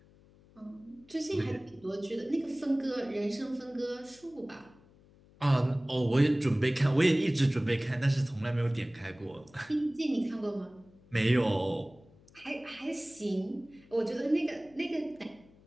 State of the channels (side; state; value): left; noise; hum, 27 dB below the sound